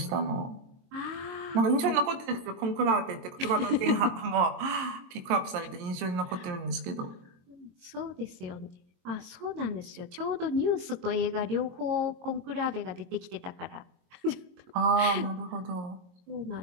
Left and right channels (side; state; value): left; late; 22 ms